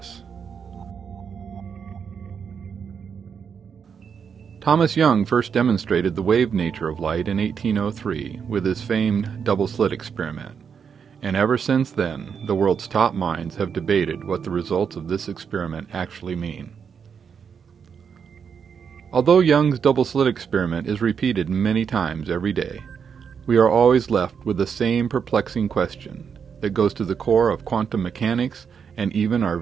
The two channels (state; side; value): quieter; left; 6.8 dB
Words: Thomas Young first demonstrated the wave nature of light in 1803 with his famed double-slit experiment, and ever since then the world's top minds have debated what the results of this experiment actually mean. Although Young's double-slit experiment is repeated many times every day, we are always left with the same perplexing question that goes to the core of quantum mechanics and even our